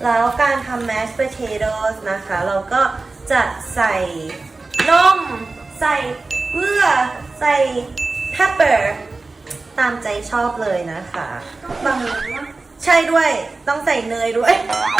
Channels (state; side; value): quieter; left; 3.6 dB